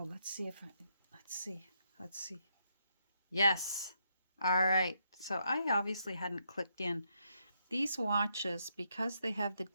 let's see. Let's see. Yes. All right. So I obviously hadn't clicked in. These watches, because they have the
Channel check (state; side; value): inverted; both; correlation -0.77